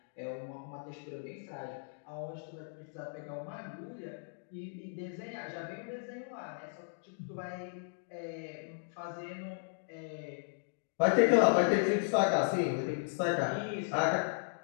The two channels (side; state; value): right; silent; digital silence